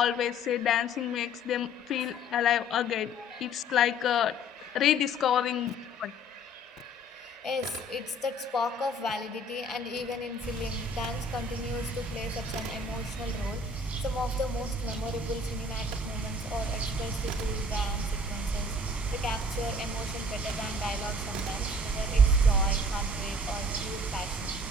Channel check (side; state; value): both; normal; correlation 0.53